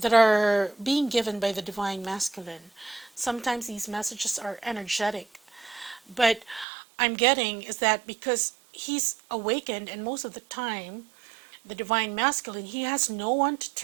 are being given by the Divine Masculine. Sometimes these messages are energetic, but I'm getting is that because he's awakened, and most of the time, the Divine Masculine, he has no one to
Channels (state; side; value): drops out; left; at 6.7 s